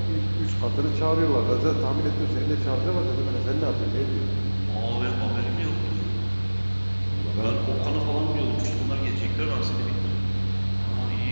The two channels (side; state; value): both; inverted; correlation -1.00